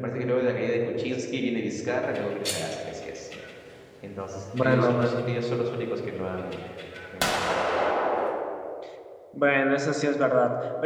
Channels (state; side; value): identical; both; correlation 1.00